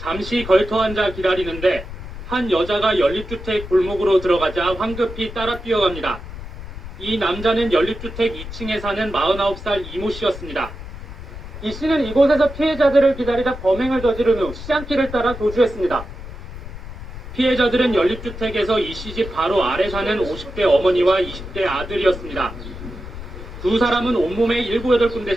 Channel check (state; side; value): noise; left; rumble, 11 dB below the sound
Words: 걸터 앉아 기다리는데 한 여자가 연립주택 골목으로 들어가자 황급히 따라 뛰어갑니다. 이 남자는 연립주택 2층에 사는 49살 이모 씨였습니다. 이 씨는 이곳에서 피해자들을 기다리다 범행을 저지른 후 시장길을 따라 도주했습니다. 피해자들은 연립주택에서 이 씨 집 바로 아래 사는 50대 어머니와 20대 아들이었습니다. 두 사람은 온몸에 7,